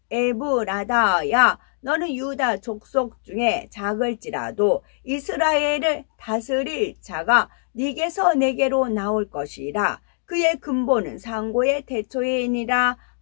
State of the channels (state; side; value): silent; right; digital silence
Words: 에브라다야 너는 유다 족속 중에 작을지라도 이스라엘을 다스릴 자가 네게서 내게로 나올 것이라. 그의 근본은 상고의 태초이니라